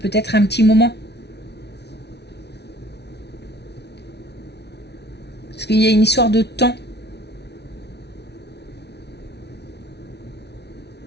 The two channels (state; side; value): late; right; 0.49 ms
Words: un petit moment. Parce qu'il y a une histoire de temps.